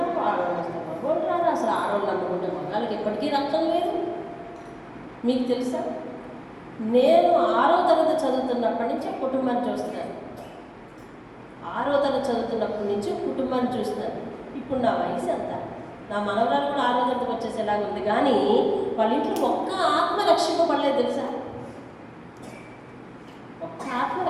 ఆడవాళ్ళు వస్తే మగవాళ్ళు రారు. అసలు ఆడవాళ్ళు నమ్ముకుంటే మగాళ్ళకి ఎప్పటికీ రక్షణ లేదు. మీకు తెలుసా, నేను 6వ తరగతి చదువుతున్నప్పటి నుంచి కుటుంబాన్ని చూస్తున్నాను. 6వ తరగతి చదువుతున్నప్పటి నుంచి కుటుంబాన్ని చూస్తున్నాను. ఇప్పుడు నా వయసు ఎంత, నా మనవరాలు కూడా 6వ తరగతికి వచ్చేసేలాగా ఉంది. కానీ వాళ్ళ ఇంట్లో ఒక్క ఆత్మ రక్షింపబడలేదు తెలుసా, ఒక్క ఆత్మ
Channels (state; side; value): identical; both; correlation 1.00